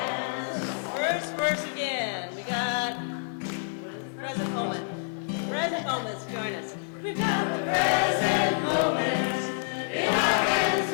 First verse again. We got present moment. Present moments, join us. We've got the present moments. In our hands,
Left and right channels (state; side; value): silent; right; digital silence